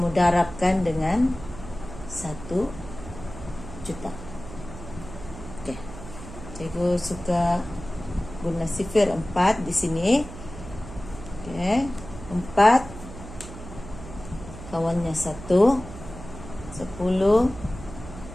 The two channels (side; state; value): right; noise; hum, 13 dB below the sound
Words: darabkan dengan 1 juta. Okey, cikgu suka guna sifir 4 di sini. Okey, 4 kawannya 1. 10